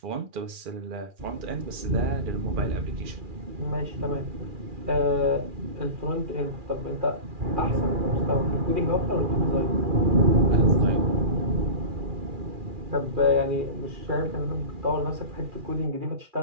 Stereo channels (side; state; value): left; late; 2.4 ms